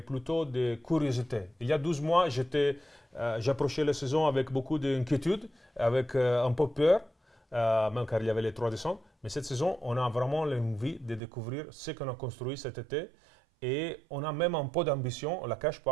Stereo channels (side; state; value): left; drops out; at 11.2 s